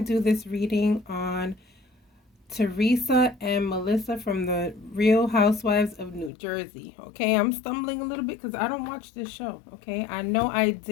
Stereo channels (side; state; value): right; drops out; at 6.3 s